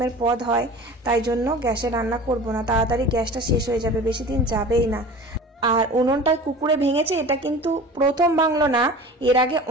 পদ হয়, তাই জন্য গ্যাসে রান্না করব না, তাড়াতাড়ি গ্যাসটা শেষ হয়ে যাবে, বেশি দিন যাবেই না। আর উনুনটায় কুকুরে ভেঙেছে, এটা কিন্তু প্রথম ভাঙলো না, এর আগে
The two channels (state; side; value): normal; both; correlation 0.39